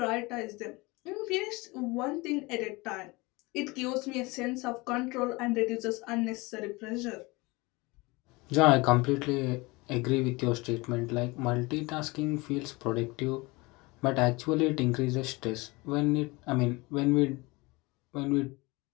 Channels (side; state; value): right; quieter; 24.1 dB